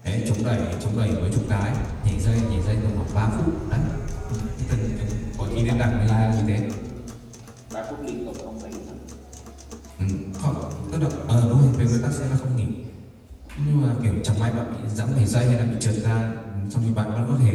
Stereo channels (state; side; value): identical; both; correlation 1.00